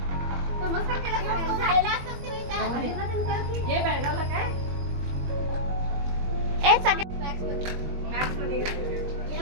नमस्कार केला जायला असतं हे बेळगावला काय ए सगळे मॅक्स मध्ये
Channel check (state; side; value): late; left; 21 ms